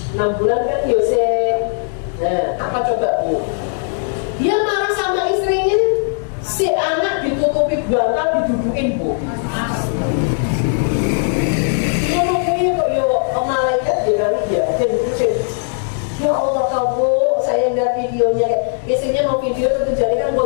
6 bulan kan Yosef. Nah, apa coba Bu? Dia marah sama istrinya, si anak ditutupi bantal, didudukin Bu. Menungguin kok ya malaikat dia ya Allah kamu, saya lihat videonya, istrinya mau video itu jadi kan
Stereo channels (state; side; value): silent; right; digital silence